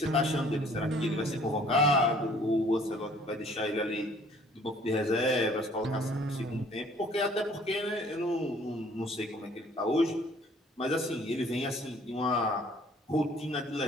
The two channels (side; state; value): both; normal; correlation 0.57